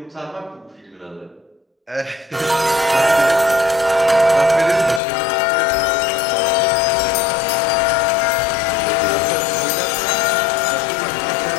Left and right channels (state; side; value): drops out; right; at 5.0 s